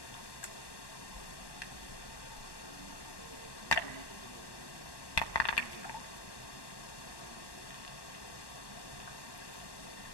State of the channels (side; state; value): right; late; 1.1 ms